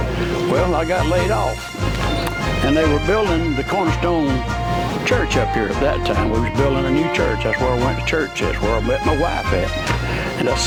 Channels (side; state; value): both; identical; correlation 1.00